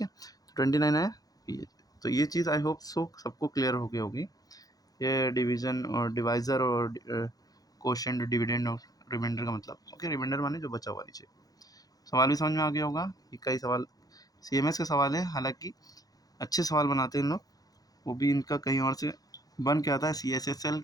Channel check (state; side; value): late; right; 0.18 ms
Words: है। 29 आया ये, तो ये चीज़ आई होप सो सबको क्लियर हो गई होगी, ये डिवीज़न और डिवाइज़र और कोशेंट, डिविडेंड और रिमाइंडर का मतलब। ओके, रिमाइंडर माने जो बचा हुआ नीचे। सवाल भी समझ में आ गया होगा, ये कई सवाल CMS के सवाल है, हालांकि अच्छे सवाल बनाते हैं इन लोग, वो भी इनका कहीं और से बन के आता है, CSSL